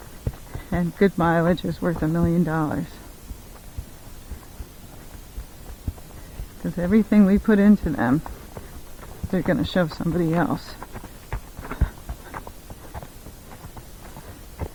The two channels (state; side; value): identical; both; correlation 1.00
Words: And good mileage is worth $1 million. Because everything we put into them, they're going to show somebody else.